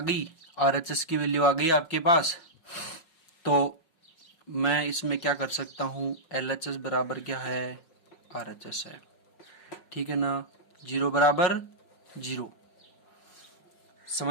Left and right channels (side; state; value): right; late; 5.4 ms